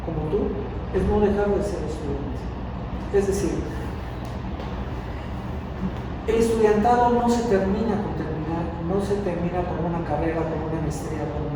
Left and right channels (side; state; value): both; identical; correlation 1.00